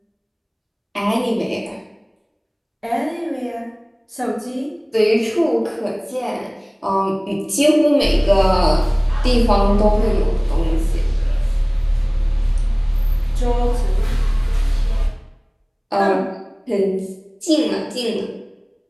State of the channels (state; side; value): identical; both; correlation 1.00